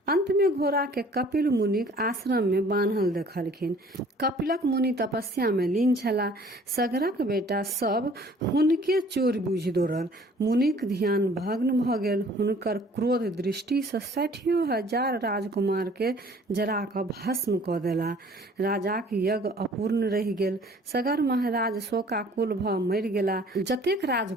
अंत में घोड़ा के कपिल मुनिक आश्रम में बान्हल देखलखिन। कपिलक मुनि तपस्या में लीन छला। सगरक बेटा सब हुनके चोर बुझि दौड़ल। मुनिक ध्यान भग्न भ गेल। हुनकर क्रोध दृष्टि से 60,000 राजकुमार के जरा क भस्म क देला। राजाक यज्ञ अपूर्ण रहि गेल। सगर महाराज शोकाकुल भ मरि गेला। जतेक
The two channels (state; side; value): normal; both; correlation 0.53